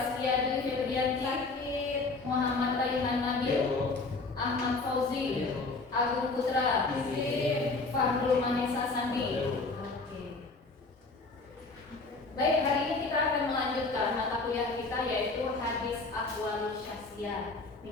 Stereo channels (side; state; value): right; quieter; 3.7 dB